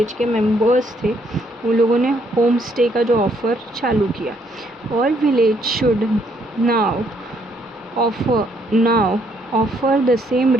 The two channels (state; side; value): normal; both; correlation 0.70